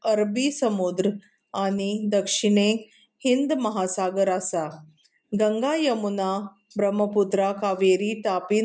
अरबी समुद्र आनी दक्षिणेक हिंद महासागर आसा. गंगा, यमुना, ब्रह्मपुत्रा, कावेरी, तापी,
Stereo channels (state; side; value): identical; both; correlation 1.00